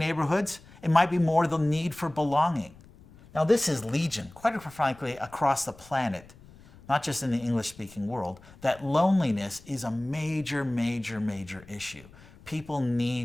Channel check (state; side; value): noise; left; rumble, 23 dB below the sound